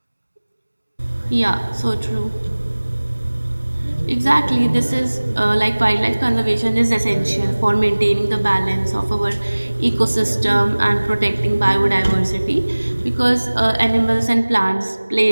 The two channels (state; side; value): inverted; both; correlation -1.00